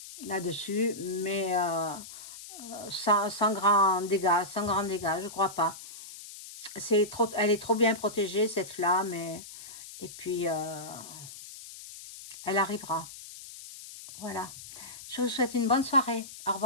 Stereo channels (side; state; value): left; noise; hiss, 14 dB below the sound